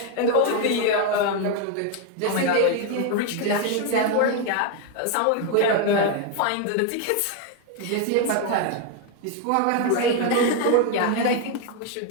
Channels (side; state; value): both; different; correlation 0.01